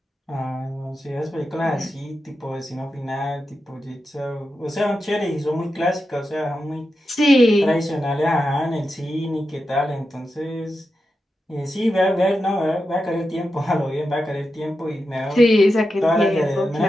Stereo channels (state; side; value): normal; both; correlation 0.89